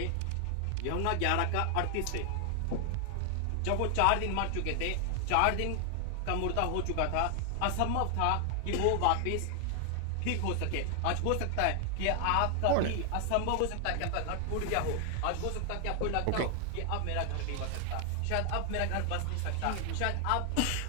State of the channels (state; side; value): different; both; correlation 0.00